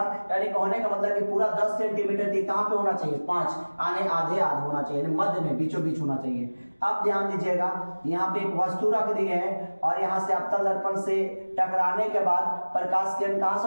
यानी कहने का मतलब कि पूरा 10 सेंटीमीटर की कहां पे होना चाहिए, 5 आने आधे होना चाहिए, मध्य में बीचों बीच होना चाहिए। अब ध्यान दीजिएगा, यहाँ पे एक वस्तु रख दी है और यहाँ से अवतल दर्पण से टकराने के बाद प्रकाश किरण कहां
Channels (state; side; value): inverted; both; correlation -1.00